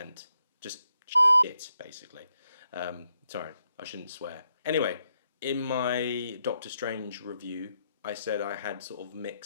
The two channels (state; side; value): inverted; both; correlation -0.81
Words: Just shit, basically. Sorry, I shouldn't swear. Anyway, in my Doctor Strange review, I said I had sort of